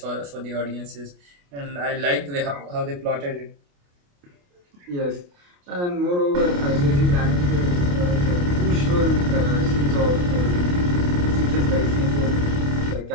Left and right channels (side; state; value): left; late; 28 ms